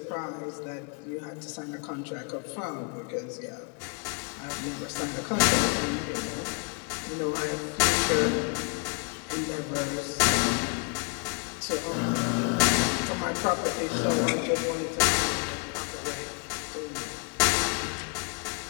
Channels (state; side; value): quieter; right; 33.8 dB